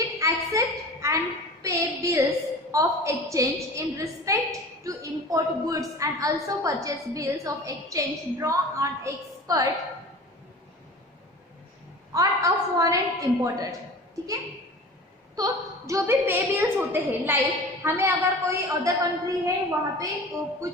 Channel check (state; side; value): normal; both; correlation 0.38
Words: accept and pay bills of exchange in respect to import goods and also purchase bills of exchange draw on expert on a foreign imported, ठीक है। तो जो भी पे बिल्स होते हैं, लाइक हमें अगर कोई अदर कंट्री है वहाँ पे